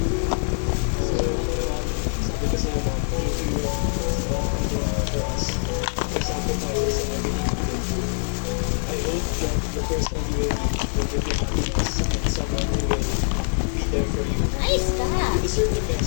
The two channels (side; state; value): right; silent; digital silence